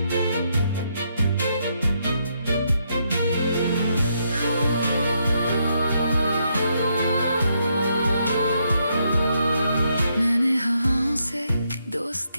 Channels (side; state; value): both; inverted; correlation -0.77